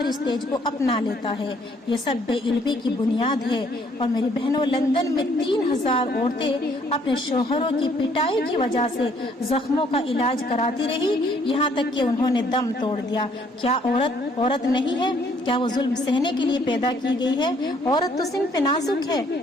سٹیج کو اپنا لیتا ہے۔ یہ سب بے علمی کی بنیاد ہے۔ اور میری بہنوں، لندن میں 3000 عورتیں اپنے شوہروں کی پٹائی کی وجہ سے زخموں کا علاج کراتی رہی، یہاں تک کہ انہوں نے دم توڑ دیا۔ کیا عورت نہیں ہے؟ کیا وہ ظلم سہنے کے لیے پیدا کی گئی ہے؟ عورت تو صنف نازک ہے،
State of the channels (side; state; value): both; normal; correlation 0.65